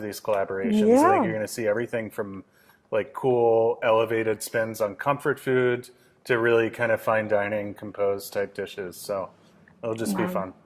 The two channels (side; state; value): both; identical; correlation 1.00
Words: collaborations. Yeah. I think you're going to see everything from like cool elevated spins on comfort food to really kind of fine dining composed type dishes. So it'll just be fun.